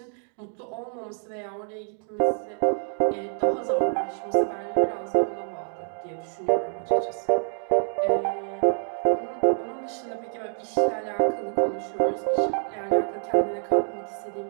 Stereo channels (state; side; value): silent; left; digital silence